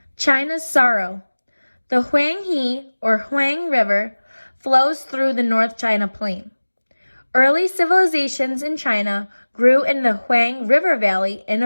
China's sorrow. The Huang River flows through the North China Plain. Early civilizations in China grew in the Huang River Valley in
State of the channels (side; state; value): both; inverted; correlation -1.00